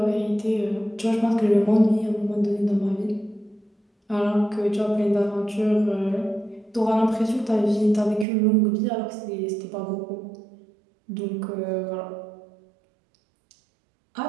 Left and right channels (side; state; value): left; drops out; at 8.2 s